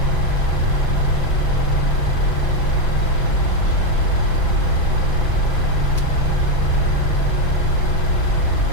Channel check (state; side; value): late; right; 6.0 ms